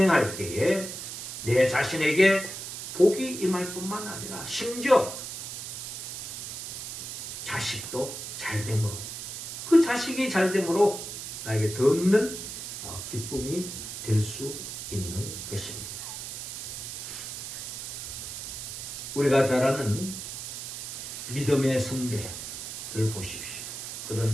때에 내 자신에게 복이 임할 뿐만 아니라 심지어 자식도 잘됨으로, 그 자식이 잘됨으로 나에게 더 없는 기쁨이 될 수 있는 것입니다. 우리가 잘 아는 믿음의 선배를 보십시오.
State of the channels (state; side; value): noise; right; hiss, 7 dB below the sound